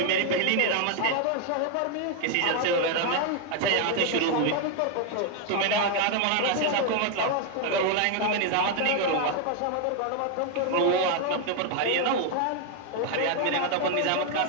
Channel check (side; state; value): both; different; correlation 0.01